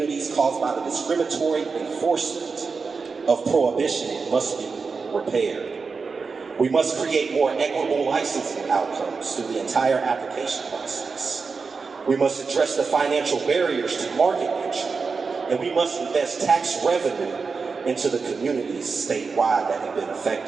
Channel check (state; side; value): quieter; left; 4.8 dB